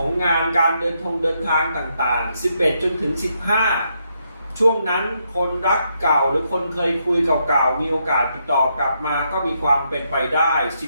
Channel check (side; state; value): both; inverted; correlation -0.78